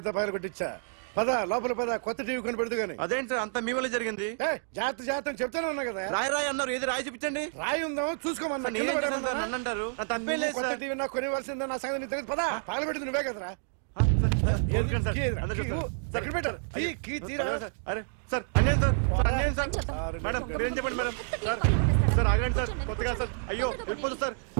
పగల కొట్టించా. పద లోపల పద, కొత్త టీవీ కొని పెడదు గాని. అదేంటి సార్ అంతా మీ వల్ల జరిగింది? జాగ్రత్త జాగ్రత్త అని చెప్తానే ఉన్నా కదా. రాయి రాయి అన్నారు, ఏది రాయి చూపించండి. రాయి ఉందా చూసుకోమన్నా. సార్, నేనేం చేశాను సార్? నన్ను అంటారు. నా తప్పేం లేదు కొత్త సార్. టీవీ నాకు కొనివ్వాల్సిందే. నా సంగతి నీకు తెలియదు. పద పగలగొట్టింది నువ్వే కదా. కార్ కీస్ లాక్కోండి, వాడి దగ్గర కార్ కీస్ లాక్కోండి. తెలుసు కదా సార్. అందరూ కీ చూస్తారు. ఇవ్వు. ఎక్కడ పెట్టు? కీ తీరా. నాన్న, కీస్ కార్లోనే సార్, ఉన్నాయి. అన్యాయం సార్. సార్, అన్యాయం సార్. చెప్తాం. మేడం మీరేం చెప్పండి మేడం. సార్ సార్ ఆగండి సార్, కొత్తగా సార్. అయ్యో వెళ్ళిపోతుంది సార్.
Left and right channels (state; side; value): silent; left; digital silence